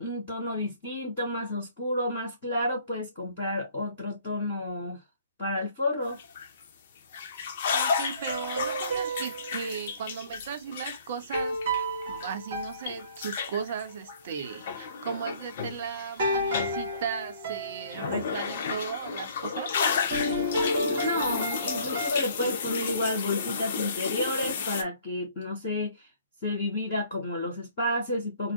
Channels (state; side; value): inverted; both; correlation -0.57